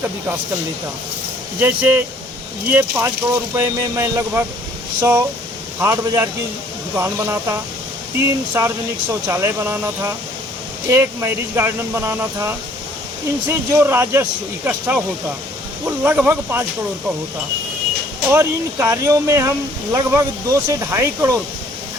का विकास कर लेता। जैसे ये 5 करोड़ रुपए में मैं लगभग 100 हाट बाज़ार की दुकान बनाता, 3 सार्वजनिक शौचालय बनाना था, 1 मैरिज गार्डन बनाना था। इनसे जो राजस्व इकट्ठा होता वो लगभग 5 करोड़ का होता, और इन कार्यों में हम लगभग 2 से ढाई करोड़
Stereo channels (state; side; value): normal; both; correlation 0.59